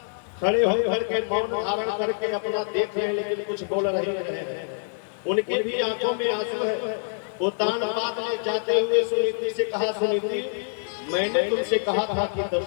खड़े होकर के मौन धारण करके अपना देख रहे, लेकिन कुछ बोल रहे हैं। उनकी भी आंखों में आंसू है। उत्तानपाद ने जाते हुए सुनीति से कहा, सुनीति मैंने तुमसे कहा था कि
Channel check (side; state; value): right; silent; digital silence